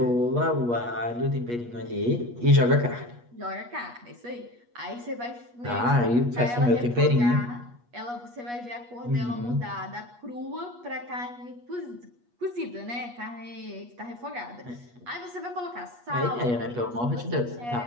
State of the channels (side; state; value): left; late; 8.3 ms